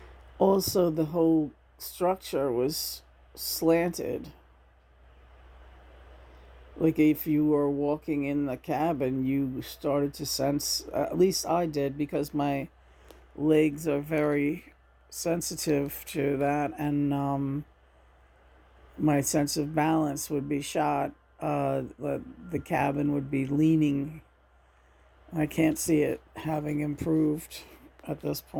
Also, the whole structure was slanted. Like if you were walking in the cabin, you started to sense, at least I did, because my legs are very sensitive to that, and my sense of balance would be shot. The cabin would be leaning. I can't see it having improved at this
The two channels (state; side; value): identical; both; correlation 1.00